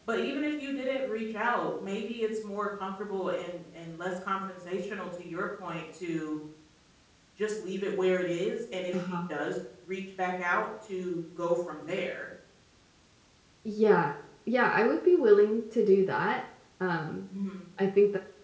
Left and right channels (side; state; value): both; identical; correlation 1.00